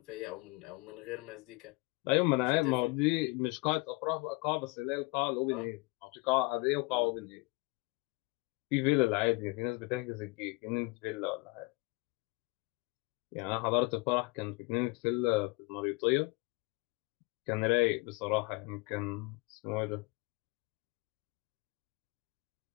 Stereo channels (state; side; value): quieter; right; 25.9 dB